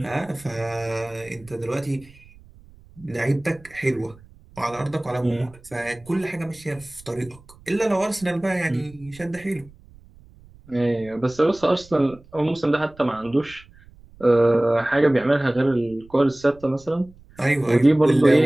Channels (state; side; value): noise; right; rumble, 24 dB below the sound